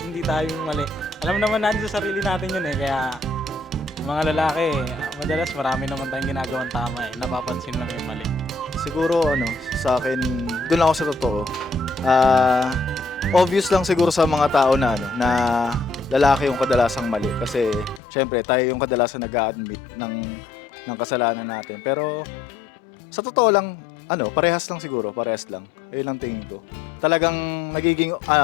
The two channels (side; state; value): right; drops out; at 18.0 s